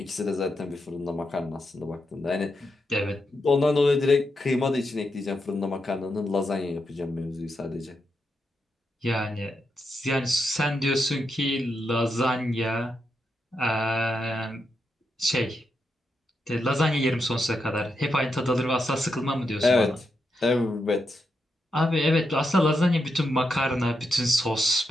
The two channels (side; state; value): both; normal; correlation 0.84